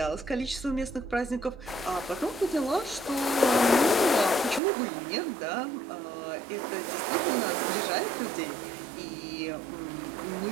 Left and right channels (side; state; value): left; drops out; at 4.6 s